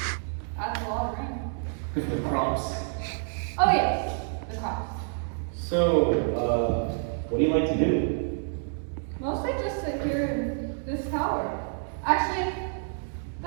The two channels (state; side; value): silent; left; 59 dB below the other